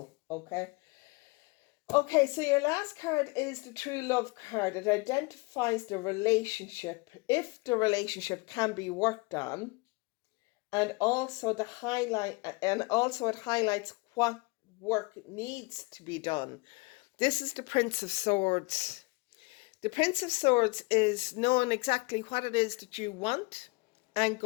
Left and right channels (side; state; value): right; quieter; 27.1 dB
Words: okay? Okay, so your last card is the True Love card. It identifies the relationship, if the relationship can be worked on, and also it highlights what work needs to be done. This is the Prince of Swords. The Prince of Swords is knowing exactly what it is that you want and